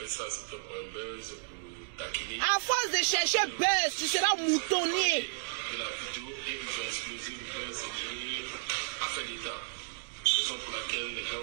ça, c'était pour un buzz, pour taquiner. À force de chercher buzz, tu seras moutonnier. De la vidéo et ils ont explosé le buzz, c'est affaire d'État. Raison pour laquelle les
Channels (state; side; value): silent; left; digital silence